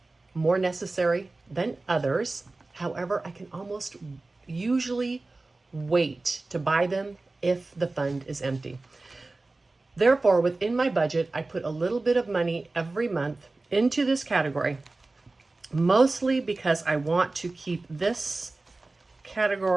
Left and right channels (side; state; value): left; quieter; 3.3 dB